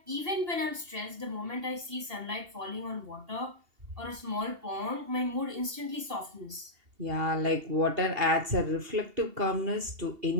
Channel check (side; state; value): left; late; 2.8 ms